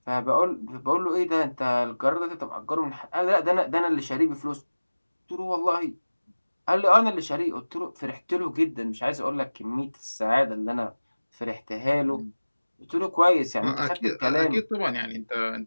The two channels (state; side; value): inverted; both; correlation -1.00